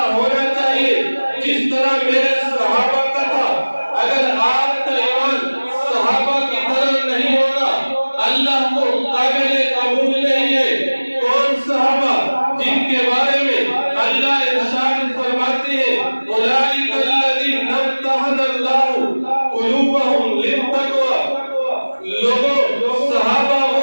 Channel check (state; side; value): inverted; both; correlation -1.00